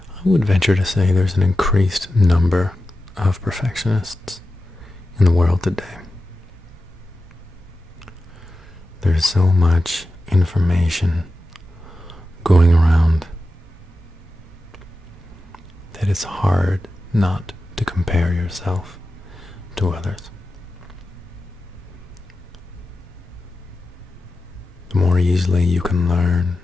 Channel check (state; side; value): normal; both; correlation 0.92